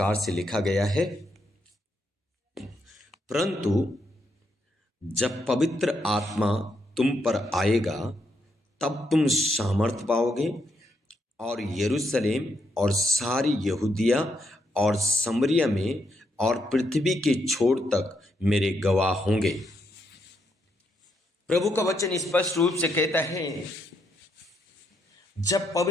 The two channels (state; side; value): normal; both; correlation 0.78